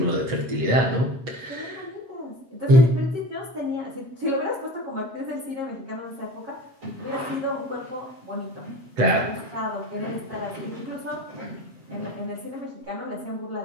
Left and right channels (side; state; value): left; late; 8.0 ms